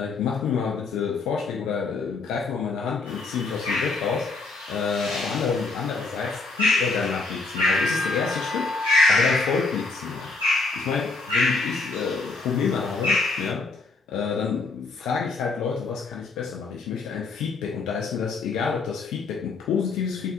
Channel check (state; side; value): quieter; right; 3.9 dB